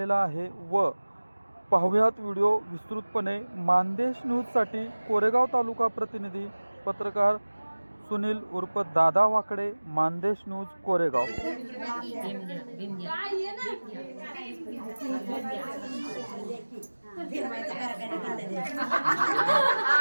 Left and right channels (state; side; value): inverted; both; correlation -1.00